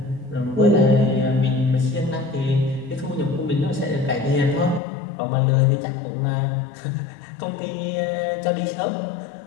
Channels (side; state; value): right; drops out; at 4.8 s